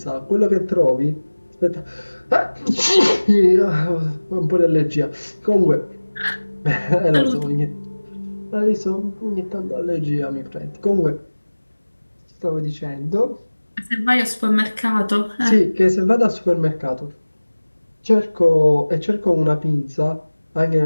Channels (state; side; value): inverted; both; correlation -1.00